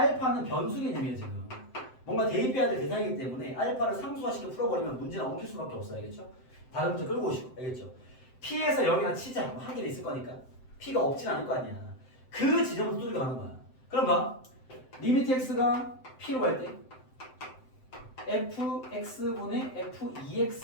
변수 개념이에요 지금. 뭔가 대입해야 될 대상이기 때문에 알파를 상수화시켜 풀어버리면 문제는 엉킬 수밖에 없어요. 알겠죠? 다른 문제 끌고 오시고. 알겠죠? p에서 0이나 치자. 뭐 한 개는 있을 거니까. p가 없진 않을 거 아니야. 그 지점부터 뚫고 가는 거야. 그럼 봐. 리미트 x가 p로 갈 때 fx분의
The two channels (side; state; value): right; late; 7.8 ms